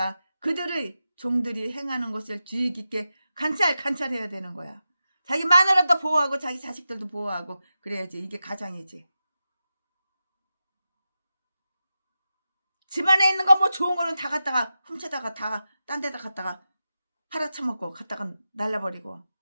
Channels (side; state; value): both; inverted; correlation -0.91